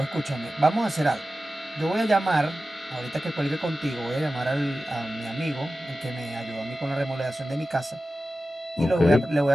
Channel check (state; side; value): normal; both; correlation 0.94